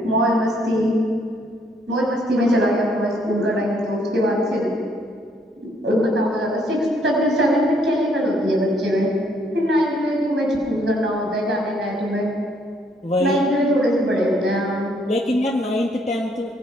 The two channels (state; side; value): normal; both; correlation 0.68